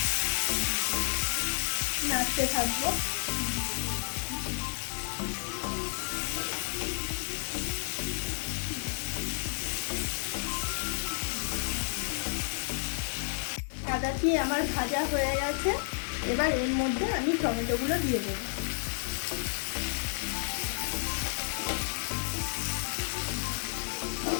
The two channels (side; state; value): right; silent; digital silence